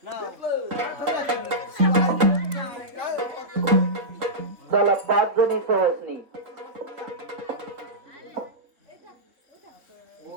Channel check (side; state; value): left; late; 3.9 ms